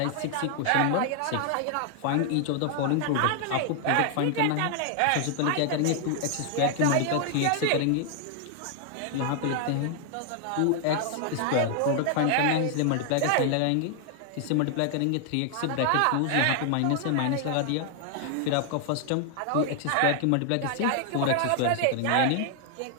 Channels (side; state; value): both; different; correlation 0.00